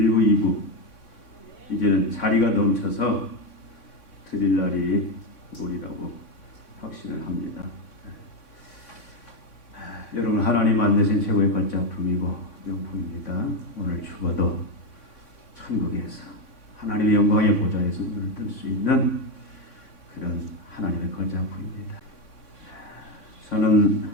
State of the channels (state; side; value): late; right; 3.6 ms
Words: 2부 이제는 자리가 넘쳐서 드릴 날이 오리라고 확신을 합니다. 여러분, 하나님 만드신 최고의 걸작품이고 명품입니다. 오늘 죽어도 천국에서 하나님의 영광의 보좌에서 눈을 뜰 수 있는 그런 하나님의 걸작품입니다. 저는